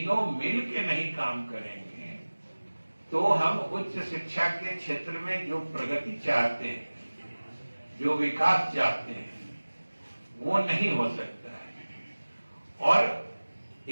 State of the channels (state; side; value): inverted; both; correlation -1.00